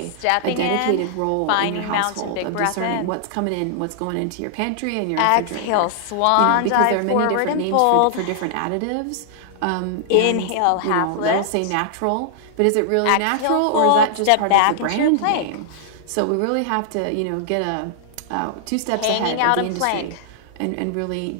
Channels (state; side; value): different; both; correlation -0.01